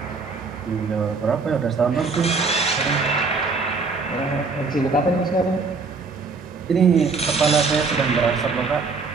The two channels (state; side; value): quieter; left; 4.4 dB